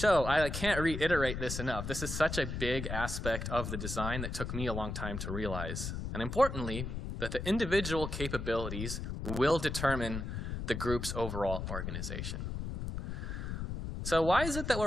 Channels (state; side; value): noise; left; rumble, 4 dB below the sound